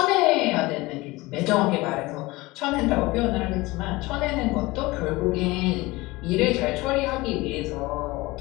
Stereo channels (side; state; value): right; quieter; 21.3 dB